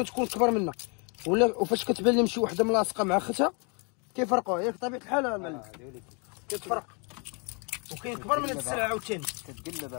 كبر منها، ولا وفاش كتبان لهم شي وحده ملاصقه مع اختها كيفرقوها. ياك طبيعه الحال المعلم كتفرق، وكاين كبر من هاد السلعه عاوتاني. كتقلبها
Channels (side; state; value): right; quieter; 34.7 dB